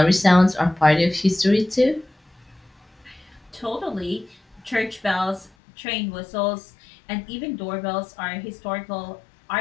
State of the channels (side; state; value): right; drops out; at 5.5 s